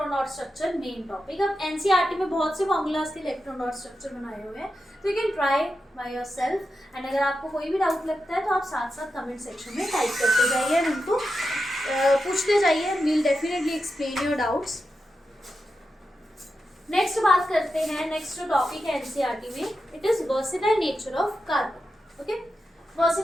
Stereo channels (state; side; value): normal; both; correlation 0.89